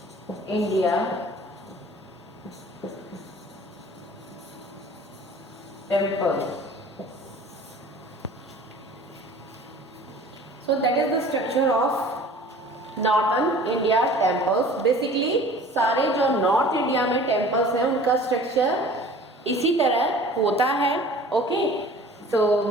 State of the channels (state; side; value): normal; both; correlation 0.45